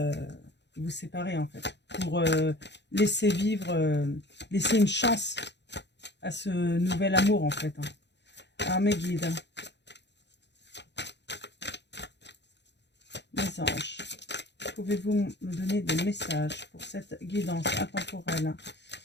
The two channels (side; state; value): right; late; 0.51 ms